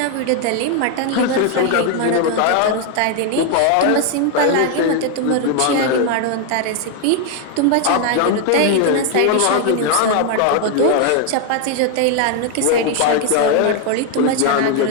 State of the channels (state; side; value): different; both; correlation 0.01